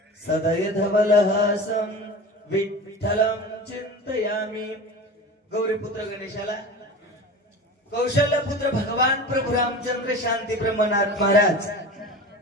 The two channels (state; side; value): normal; both; correlation 0.33